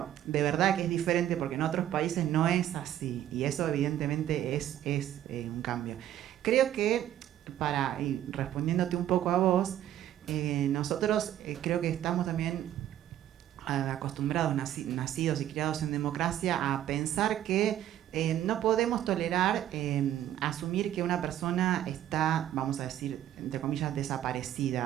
de verdad que es diferente, porque en otros países no es así, y eso evidentemente es un cambio. Creo que, y respondiéndote un poco a vos, nosotros creo que estamos también acostumbrados, nacidos y criados en democracia, a pensar que no podemos tolerar asumir que una persona está, vamos a decir, entre comillas,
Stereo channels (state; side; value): quieter; left; 11.9 dB